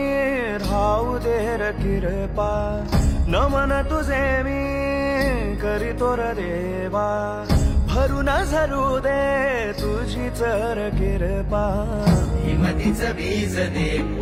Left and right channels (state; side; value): identical; both; correlation 1.00